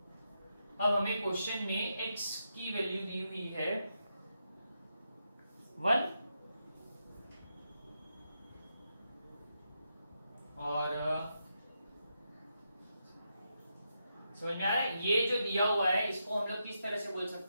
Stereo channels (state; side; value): inverted; both; correlation -0.84